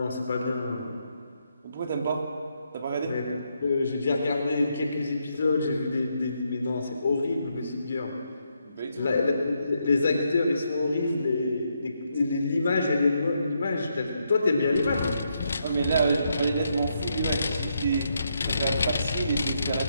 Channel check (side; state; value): both; inverted; correlation -0.79